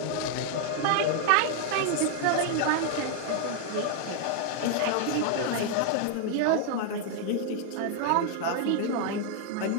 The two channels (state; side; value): different; both; correlation 0.00